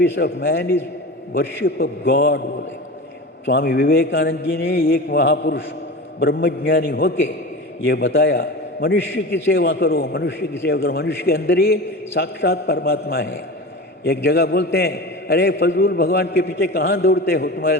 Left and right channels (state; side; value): normal; both; correlation 0.30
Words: of man is worship of God बोले स्वामी विवेकानंद जी ने। एक महापुरुष ब्रह्मज्ञानी होके ये बताया, मनुष्य की सेवा करो, मनुष्य की सेवा करो, मनुष्य के अंदर ही साक्षात परमात्मा है। एक जगह बोलते हैं, अरे फजूल भगवान के पीछे कहाँ दौड़ते हो,